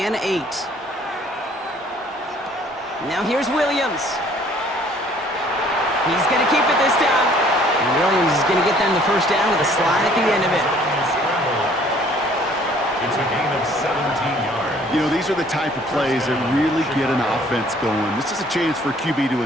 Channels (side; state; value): both; normal; correlation 0.57